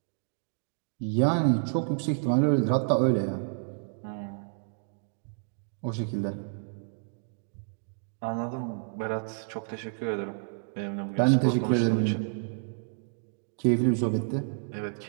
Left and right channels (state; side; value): silent; left; digital silence